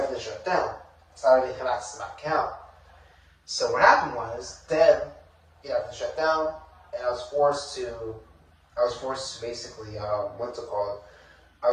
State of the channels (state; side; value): identical; both; correlation 1.00